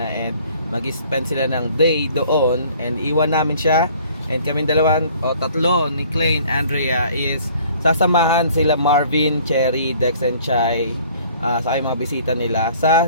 and mag-spend sila ng day doon and iwan namin siya. And kaming tatlo ni Clay and Andrea is sasamahan sila Marvin, Cherry, Dex and Chai sa mga bisita nila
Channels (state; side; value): inverted; both; correlation -0.55